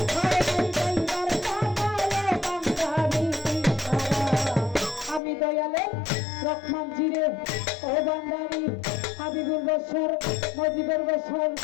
রহমান জিরে ও বান্দারি হাবিবুর বছর মজিবুর বছর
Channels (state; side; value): drops out; right; at 5.2 s